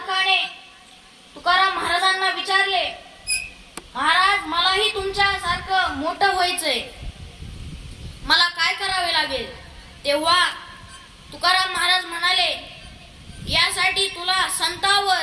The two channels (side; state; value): both; identical; correlation 1.00